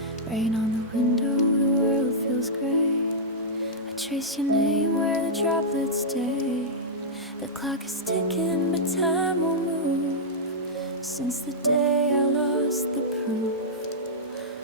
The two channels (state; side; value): normal; both; correlation -0.10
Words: Rain on the window, the world feels gray. I trace your name where the droplets stay. The clock is ticking, but time won't move since the day I lost the proof